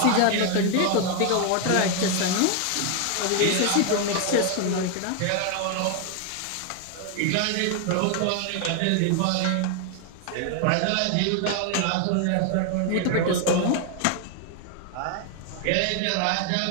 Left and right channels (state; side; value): different; both; correlation 0.00